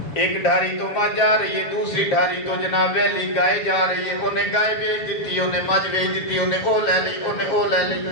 ایک ڈھاری تو مجھ جا رہی ہے، دوسری ڈھاری تو جناب ویلی گائے جا رہی ہے. انہیں گائے بیچ دیتی، انہیں مجھ بیچ دیتی، انہیں او لے لی، انہیں او لے لی،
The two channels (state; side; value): late; right; 7.1 ms